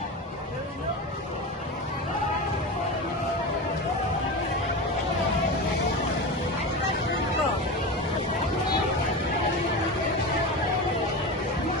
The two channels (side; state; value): both; normal; correlation 0.24